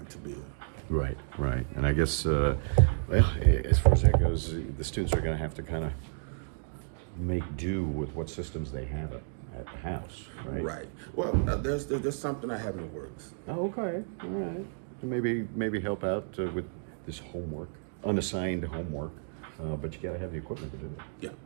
to build. Right, right. And I guess, well, as far as that goes, the students are going to have to kind of make do with what systems they have at the house, right? Right. Well, there's something I have in the works. Oh, okay. All right. So maybe help out with this homework, unassigned homework, but you got to have the equipment to do it. Yeah.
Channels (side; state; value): left; silent; digital silence